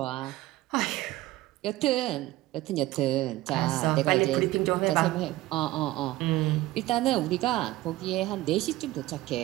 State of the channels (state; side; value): quieter; left; 17.4 dB